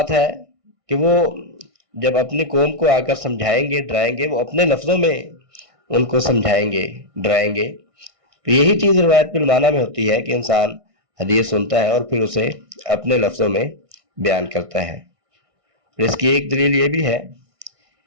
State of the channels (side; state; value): left; late; 1.6 ms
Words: ہے کہ وہ جب اپنی قوم کو آ کر سمجھائیں گے ڈرائیں گے، وہ اپنے لفظوں میں ان کو سمجھائیں گے ڈرائیں گے. تو یہی چیز روایت بالمعنی میں ہوتی ہے کہ انسان حدیث سنتا ہے اور پھر اسے اپنے لفظوں میں بیان کرتا ہے. اور اس کی ایک دلیل یہ بھی ہے